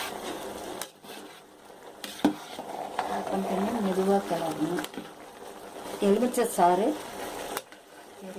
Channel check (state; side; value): identical; both; correlation 1.00